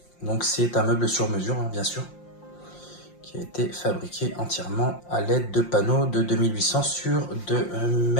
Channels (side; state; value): right; late; 5.7 ms